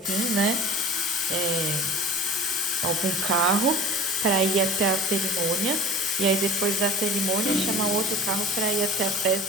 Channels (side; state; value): both; normal; correlation 0.39